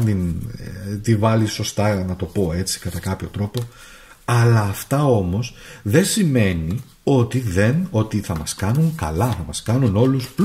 τη βάλει σωστά, να το πω έτσι, κατά κάποιο τρόπο. Αλλά αυτά όμως δεν σημαίνει ότι θα μας κάνουν καλά, θα μας κάνουν όλους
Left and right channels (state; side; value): identical; both; correlation 1.00